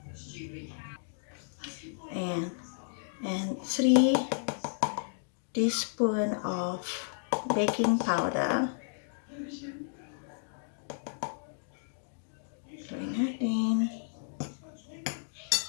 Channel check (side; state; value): right; silent; digital silence